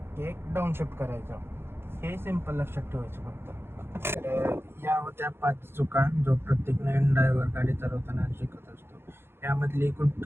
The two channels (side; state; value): left; late; 0.11 ms